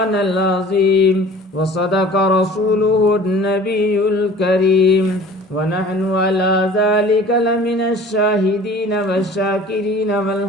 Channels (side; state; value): both; normal; correlation 0.45